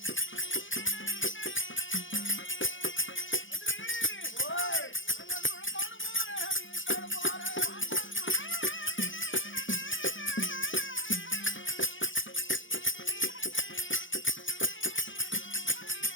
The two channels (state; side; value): late; right; 0.56 ms